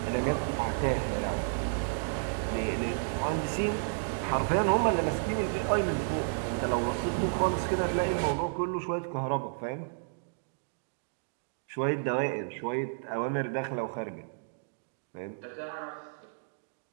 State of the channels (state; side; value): silent; left; digital silence